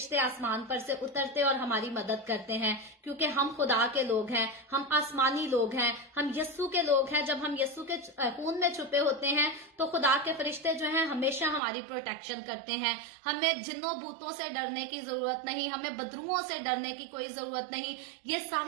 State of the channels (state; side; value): drops out; left; at 11.6 s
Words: आसमान पर से उतरते और हमारी मदद करते हैं, क्योंकि हम खुदा के लोग हैं, हम आसमानी लोग हैं, हम यस्सु के लोग हैं। जब हम यस्सु के खून में छुपे होते हैं तो खुदा के फरिश्ते जो हैं हमेशा हमारी प्रोटेक्शन करते हैं। हमें जिन्नों भूतों से डरने की जरूरत नहीं, हमें बदरुओं से डरने की कोई जरूरत नहीं। ये